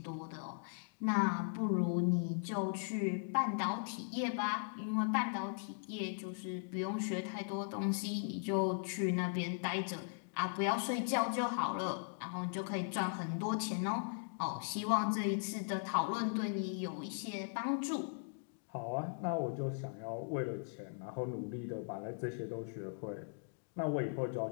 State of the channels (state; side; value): silent; right; digital silence